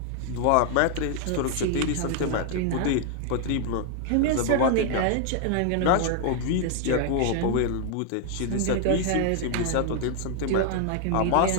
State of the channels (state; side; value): different; both; correlation 0.00